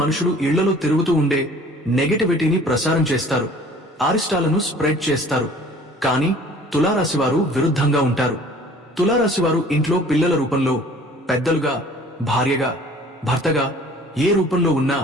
ఇళ్లలో తిరుగుతూ ఉండే నెగటివిటీని ప్రసారం చేస్తారు, అరిష్టాలను స్ప్రెడ్ చేస్తారు. కానీ తులారాశివారు విరుద్ధంగా ఉంటారు. తులారాశివారు ఇంట్లో పిల్లల రూపంలో, పెద్దలుగా, భార్యగా, భర్తగా ఏ రూపంలో ఉన్నా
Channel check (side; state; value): both; normal; correlation 0.50